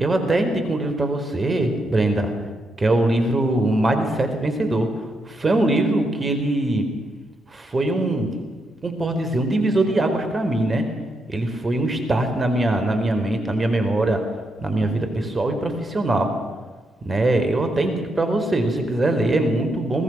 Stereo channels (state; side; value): normal; both; correlation 0.81